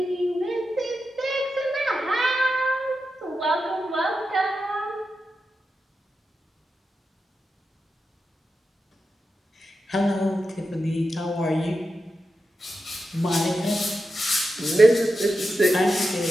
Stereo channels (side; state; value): both; normal; correlation 0.89